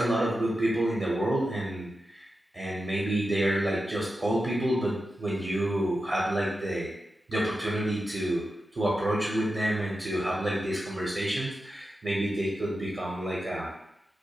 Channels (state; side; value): normal; both; correlation 0.91